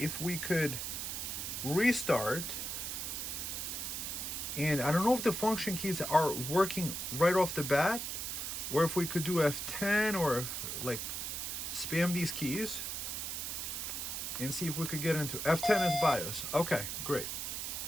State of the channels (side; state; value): right; noise; hiss, 4 dB below the sound